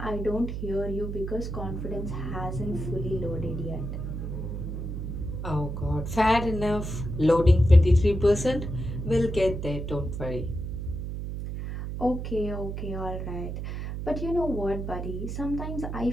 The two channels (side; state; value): right; noise; hum, 5 dB below the sound